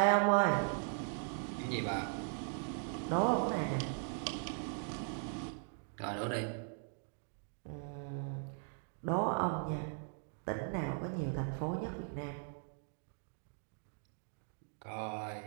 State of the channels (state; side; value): silent; left; 52 dB below the other